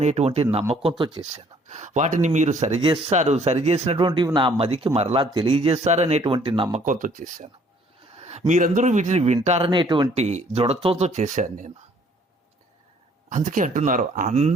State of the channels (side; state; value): both; normal; correlation 0.60